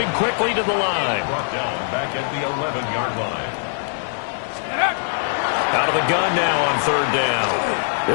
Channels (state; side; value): silent; right; 63 dB below the other